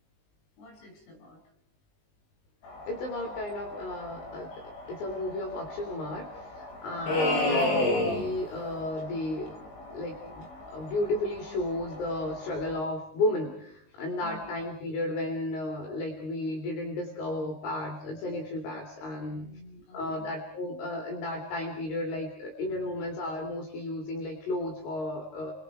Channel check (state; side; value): late; right; 19 ms